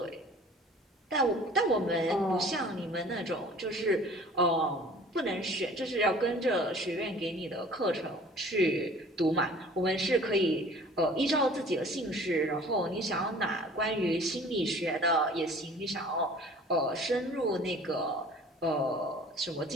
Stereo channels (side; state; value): both; normal; correlation 0.48